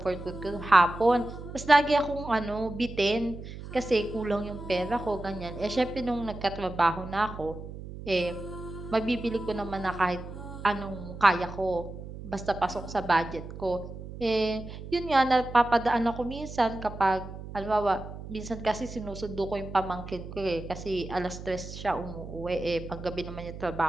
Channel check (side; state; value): right; noise; hum, 11 dB below the sound